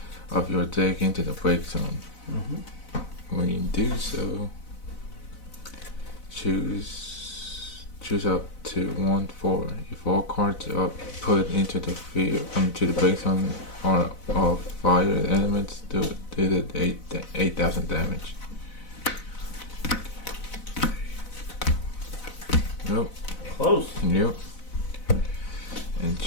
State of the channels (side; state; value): right; late; 4.0 ms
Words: of your deck into the break zone. When you do so, choose up to 1/4. If all cards are put into the field, to the break zone are of fire elements, do the 8,000 damage. Nope. Close. Yep. And